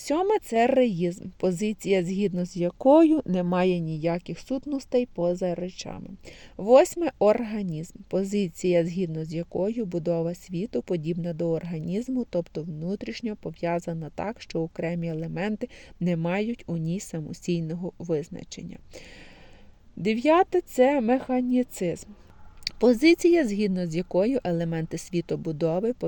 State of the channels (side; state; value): both; identical; correlation 1.00